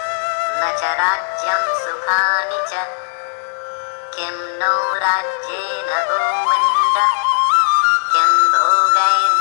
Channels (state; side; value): silent; right; digital silence